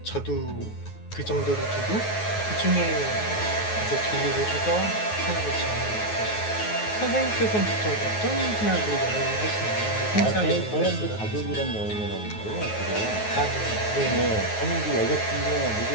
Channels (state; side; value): late; right; 9.4 ms